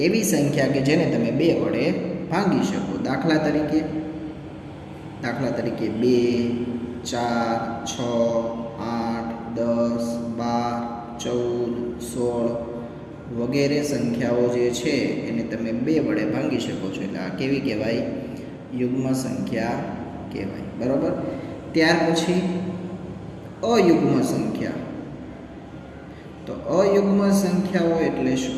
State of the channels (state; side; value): identical; both; correlation 1.00